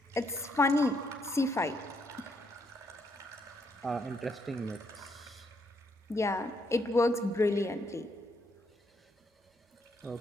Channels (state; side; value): normal; both; correlation 0.74